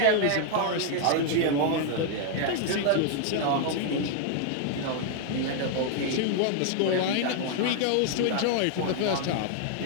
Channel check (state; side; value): different; both; correlation 0.00